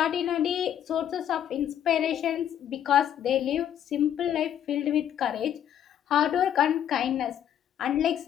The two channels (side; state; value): right; quieter; 10.1 dB